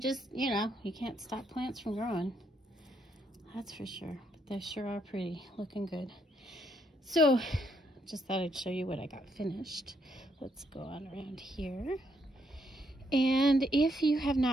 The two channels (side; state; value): both; normal; correlation 0.74